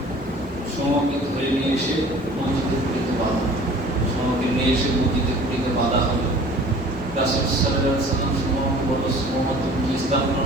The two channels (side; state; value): both; normal; correlation 0.48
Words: সুমামাকে ধরে নিয়ে এসে মসজিদের কুড়িতে বাঁধা। সুমামাকে নিয়ে এসে মসজিদের কুড়িতে বাঁধা হলো। রাসূল সাল্লাল্লাহু আলাইহি ওয়াসাল্লাম সুমামাকে বলল, সুমামা তুমি কি ইসলাম